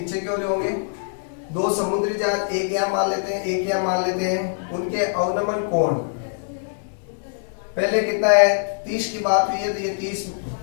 क्यों होंगे, 2 समुद्री जहाज, एक यहाँ मान लेते हैं, एक यहाँ मान लेते हैं, उनके अवनमन कोण पहले कितना है, 30 की बात हुई है, तो ये 30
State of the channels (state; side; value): silent; right; 63 dB below the other